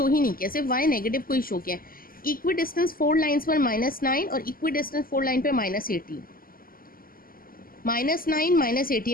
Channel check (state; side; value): late; right; 0.42 ms